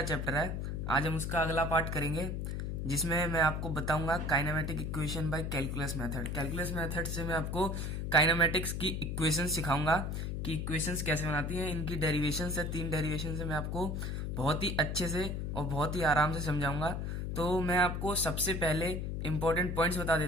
चैप्टर है, आज हम उसका अगला पार्ट करेंगे, जिसमें मैं आपको बताऊंगा kinematic equation by calculus method. Calculus method से मैं आपको काइनेमेटिक्स की इक्वेशन सिखाऊंगा कि इक्वेशंस कैसे बनाती हैं। इनकी डेरिवेशन से 3 डेरिवेशन से मैं आपको बहुत ही अच्छे से और बहुत ही आराम से समझाऊंगा। तो मैं आपको सबसे पहले इंपॉर्टेंट पॉइंट्स बता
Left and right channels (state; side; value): noise; left; hum, 2 dB below the sound